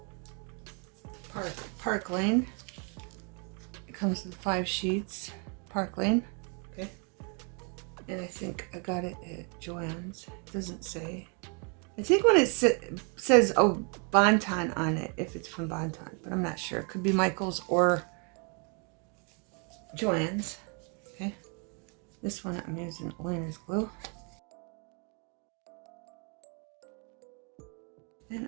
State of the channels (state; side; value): quieter; left; 36.7 dB